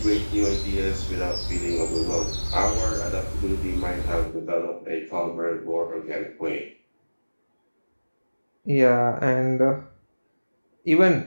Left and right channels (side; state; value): both; inverted; correlation -1.00